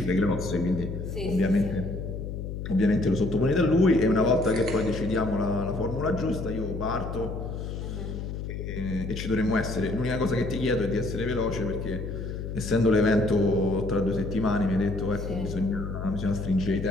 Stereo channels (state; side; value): noise; left; hum, 6 dB below the sound